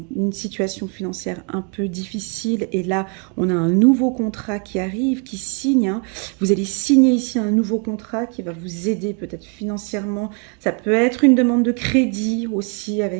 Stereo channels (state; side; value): quieter; left; 37.1 dB